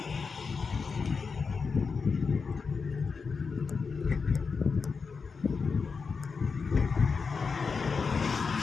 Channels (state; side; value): quieter; right; 5.1 dB